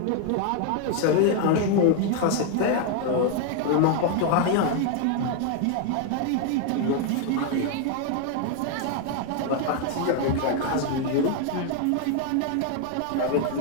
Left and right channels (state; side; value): different; both; correlation 0.01